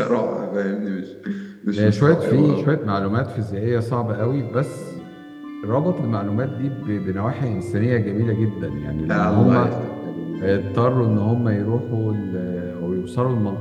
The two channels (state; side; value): identical; both; correlation 1.00